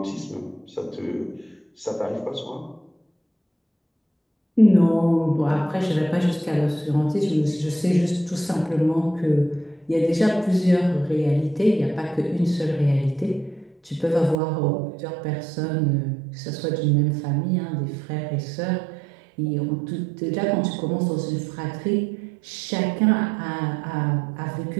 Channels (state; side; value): drops out; left; at 14.4 s